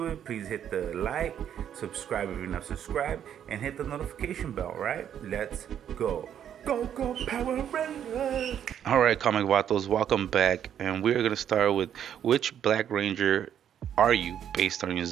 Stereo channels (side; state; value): left; quieter; 9.5 dB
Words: it, please hit the like, subscribe if you're not subscribed, and hit the notification bell. Right? Let's go. Go Power Rangers! All right, comic vatos, welcome back, and we're gonna start with which Black Ranger are you, based on your